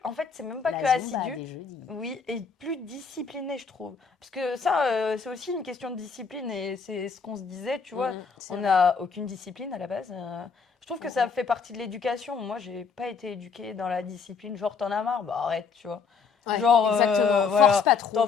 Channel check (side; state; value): right; quieter; 5.6 dB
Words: En fait, c'est même pas que La Zumba assidu, des jeudis. oui, et plus discipliné, je trouve. Parce que ça, c'est aussi une question de discipline et c'est ce qu'on se disait, tu vois. C'est On vrai. n'a aucune discipline à la base. Je trouve que Mm, ça mm. fait partie de l'éducation. Moi, j'ai pas été éduquée dans la discipline. Genre, t'en as marre, bah arrête, tu vois. Ouais, Genre, exactement. Force voilà. pas trop.